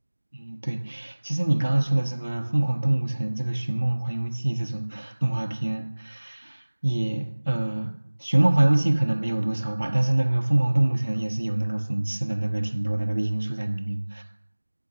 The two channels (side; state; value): both; inverted; correlation -1.00